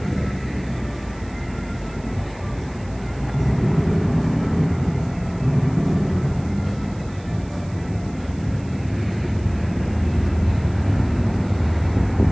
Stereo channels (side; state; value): right; noise; hiss, 26 dB below the sound